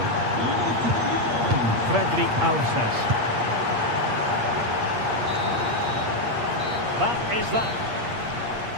Fredrik Aursnes. That is that.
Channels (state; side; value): late; left; 8.5 ms